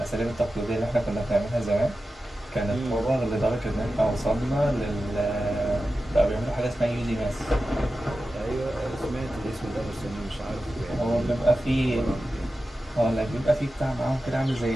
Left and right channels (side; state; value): both; normal; correlation 0.93